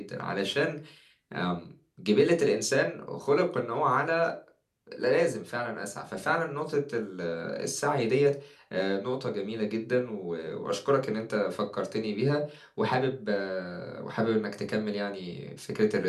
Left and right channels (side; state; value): both; identical; correlation 1.00